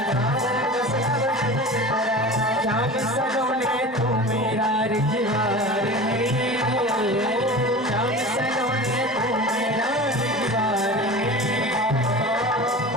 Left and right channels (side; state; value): both; normal; correlation 0.34